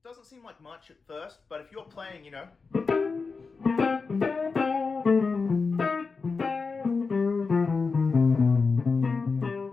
doesn't seem like much at first, but if you're playing,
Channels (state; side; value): quieter; right; 4.6 dB